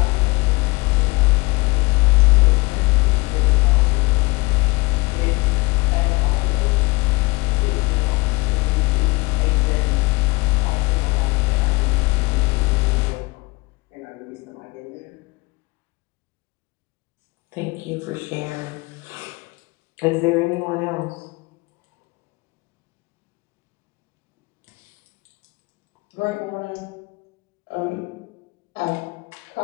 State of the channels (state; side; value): quieter; right; 24.7 dB